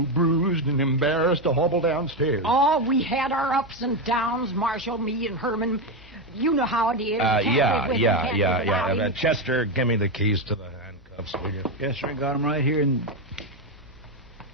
bruised and embarrassed to hobble downstairs. Oh, we had our ups and downs, Marshal, me and Herman. You know how it is. Can't live with him, can't live without him. Chester, give me the keys to the handcuffs, will you? Yes, sir. I got them right here. And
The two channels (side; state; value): left; noise; hum, 26 dB below the sound